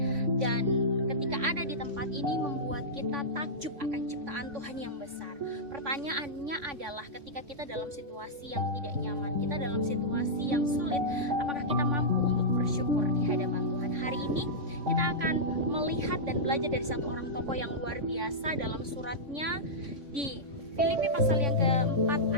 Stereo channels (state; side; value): late; left; 3.5 ms